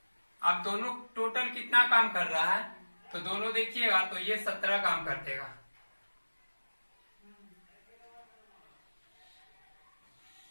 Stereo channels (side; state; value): both; inverted; correlation -1.00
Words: अब दोनों टोटल कितना काम कर रहा है तो दोनों देखिएगा तो ये 17 काम कर देगा।